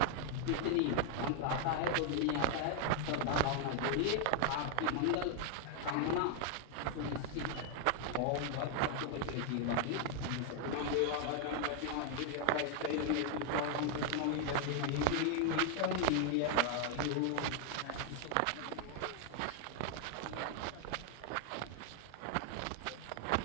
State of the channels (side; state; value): both; different; correlation 0.00